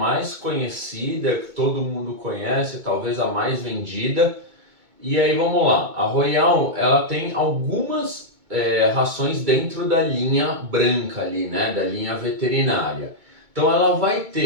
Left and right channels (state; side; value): late; left; 2.2 ms